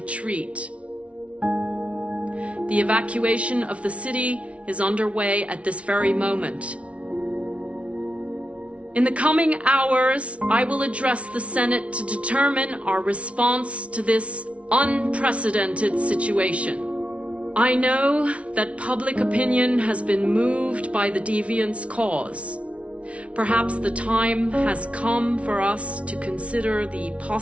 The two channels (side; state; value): left; late; 0.062 ms